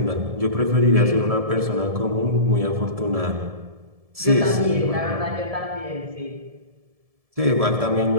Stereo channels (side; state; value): left; late; 1.7 ms